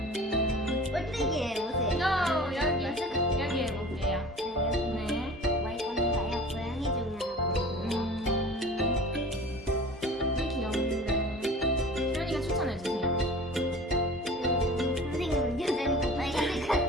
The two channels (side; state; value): both; normal; correlation 0.41